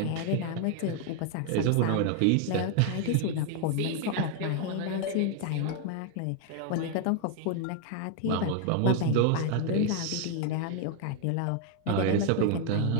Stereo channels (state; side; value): different; both; correlation 0.00